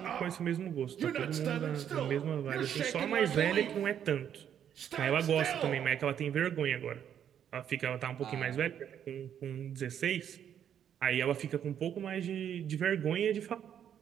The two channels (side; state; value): left; quieter; 9.3 dB